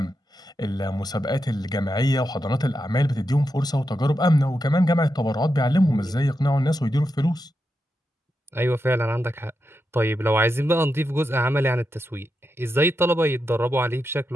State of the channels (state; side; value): normal; both; correlation 0.86